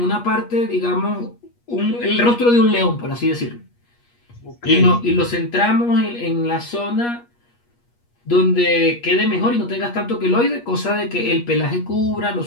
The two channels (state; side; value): late; right; 8.4 ms